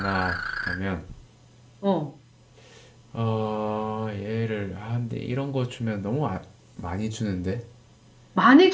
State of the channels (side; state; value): both; identical; correlation 1.00